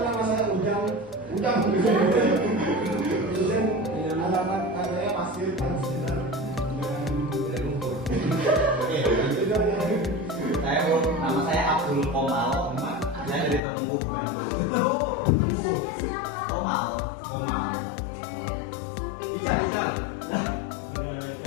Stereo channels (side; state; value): right; drops out; at 13.6 s